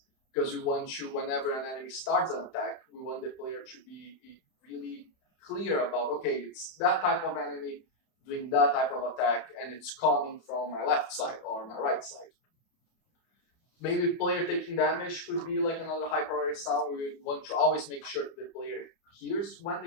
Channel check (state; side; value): late; right; 31 ms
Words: because we want to, whenever an enemy starts an attack, we want the player to be really clear about, okay, it's that type of enemy doing that type of attack, and it's coming from my left side or my right side. Maybe player taking damage could be like another high priority sound. We want to always make sure the player hears when